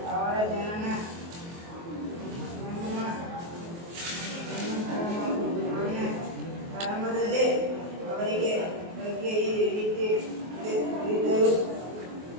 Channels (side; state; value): left; late; 23 ms